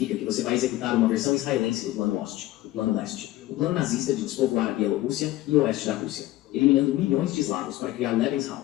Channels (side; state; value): right; quieter; 16.1 dB